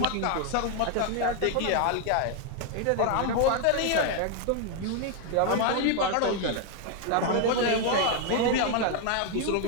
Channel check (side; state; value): both; different; correlation 0.00